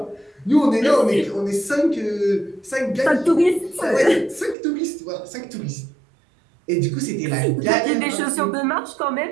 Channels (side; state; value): left; drops out; at 4.5 s